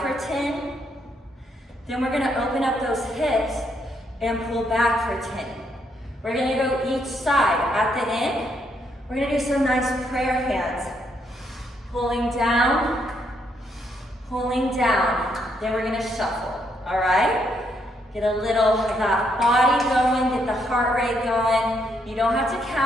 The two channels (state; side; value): normal; both; correlation 0.75